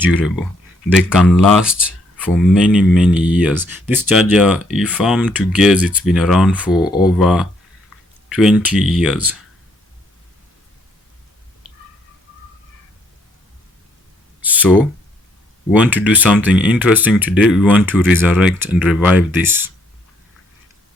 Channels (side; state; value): both; normal; correlation 0.69